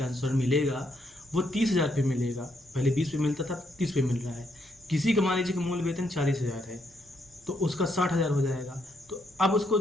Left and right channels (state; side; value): normal; both; correlation 0.76